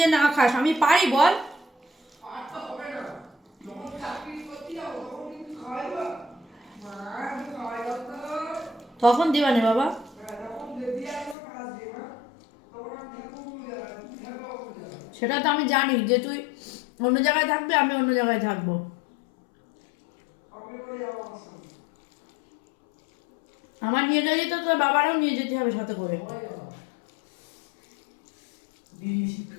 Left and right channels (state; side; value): drops out; right; at 11.4 s